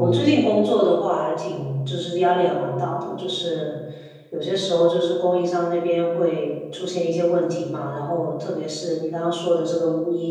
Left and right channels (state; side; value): identical; both; correlation 1.00